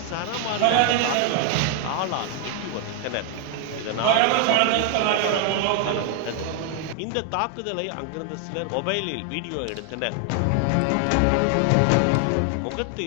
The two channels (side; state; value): both; different; correlation 0.00